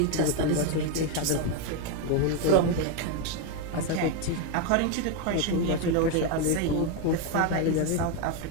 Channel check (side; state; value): both; different; correlation 0.02